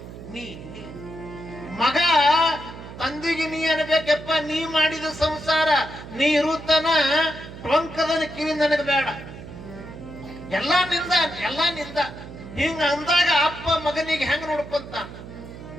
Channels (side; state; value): right; noise; hum, 13 dB below the sound